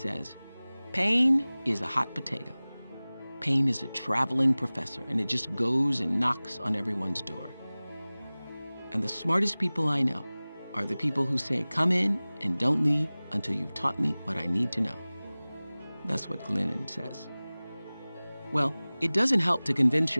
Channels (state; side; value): inverted; both; correlation -0.99